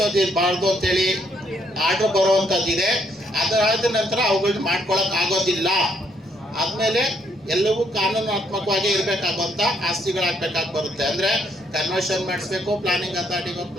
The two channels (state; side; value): normal; both; correlation 0.71